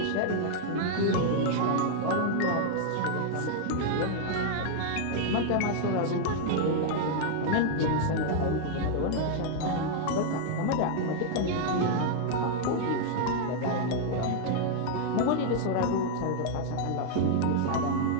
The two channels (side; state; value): both; different; correlation -0.01